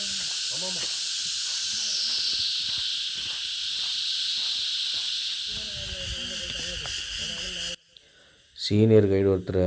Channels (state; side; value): identical; both; correlation 1.00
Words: சீனியர் கைடு ஒருத்தர்